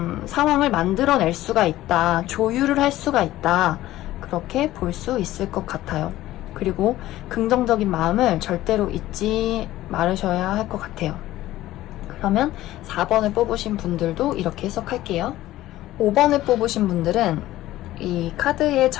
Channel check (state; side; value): quieter; right; 15.4 dB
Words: 상황을 만들어낼 수가 있다, 조율을 할 수가 있다, 그렇게 볼 수 있을 것 같아요. 그리고 긍정적인 마음을 절대로 잊지 말으셔야 할 것 같아요. 그러면 4번을 뽑으신 분들도 이렇게 해석할게요. 5번을 뽑으신 분들은 이 카드의